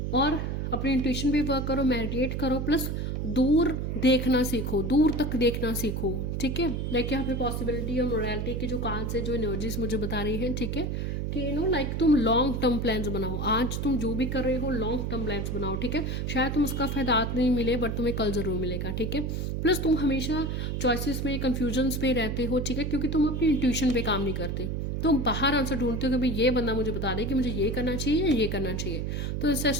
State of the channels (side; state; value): right; noise; hum, 2 dB below the sound